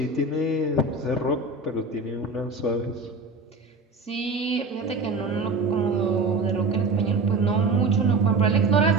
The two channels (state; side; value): quieter; left; 3.5 dB